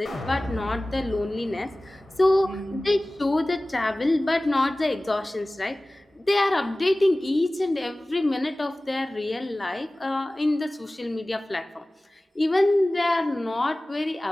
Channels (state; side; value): normal; both; correlation 0.98